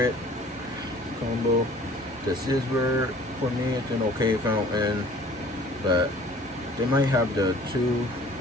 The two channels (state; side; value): normal; both; correlation 0.51